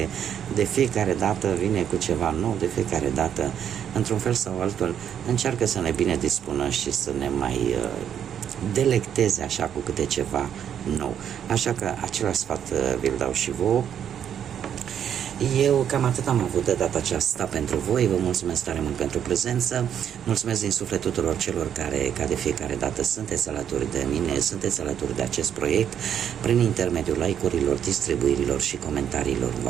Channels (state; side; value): quieter; left; 9.1 dB